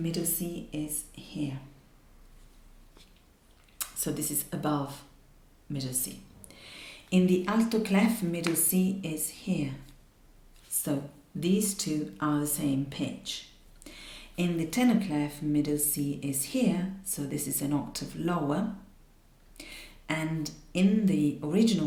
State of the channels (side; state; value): both; identical; correlation 1.00